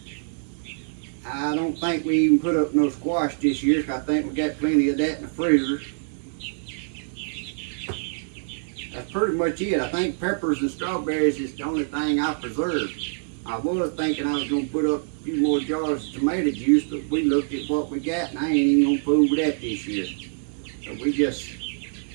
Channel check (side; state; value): left; silent; digital silence